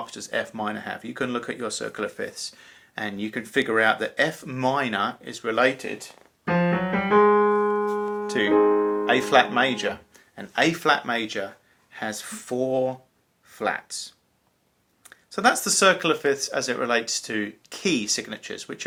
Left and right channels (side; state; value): both; identical; correlation 1.00